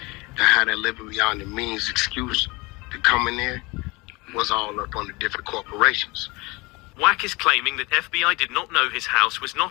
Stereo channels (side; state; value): right; quieter; 24.9 dB